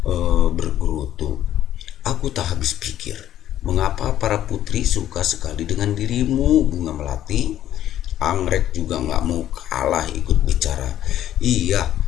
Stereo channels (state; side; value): quieter; right; 11.9 dB